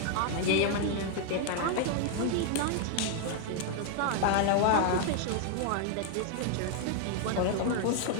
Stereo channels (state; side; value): different; both; correlation 0.00